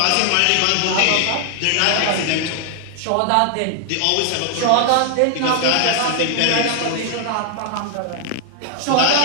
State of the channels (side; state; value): both; different; correlation 0.00